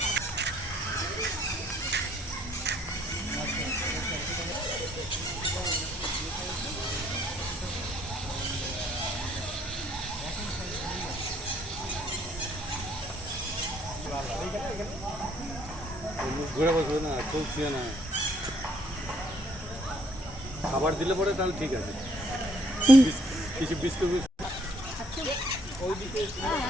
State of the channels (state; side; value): normal; both; correlation 0.65